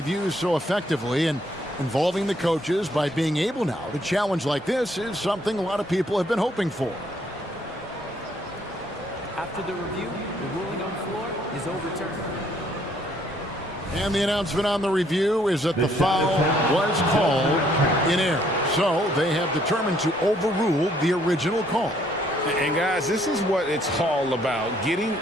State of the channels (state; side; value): normal; both; correlation 0.67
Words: so effectively, and involving the coaches by being able now to challenge like this is something a lot of people have been hoping for. After the review, the ruling on the floor is overturned. And the announcement on the review is that the foul was called in error. So they have determined to overrule the original call. And guys, this is what it's all about, getting